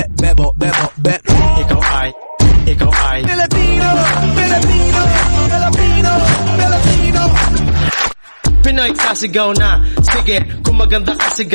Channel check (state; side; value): inverted; both; correlation -1.00